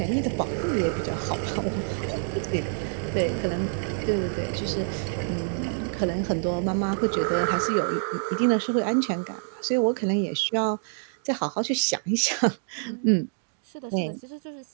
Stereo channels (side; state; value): left; silent; digital silence